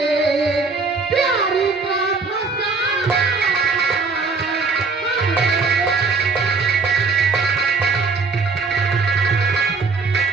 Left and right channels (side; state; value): left; quieter; 4.3 dB